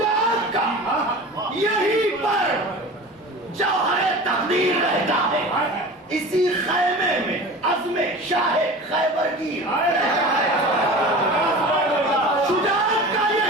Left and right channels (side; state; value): both; normal; correlation 0.36